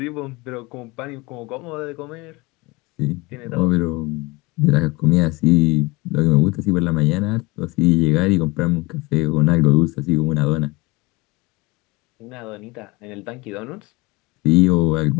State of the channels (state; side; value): quieter; right; 23.5 dB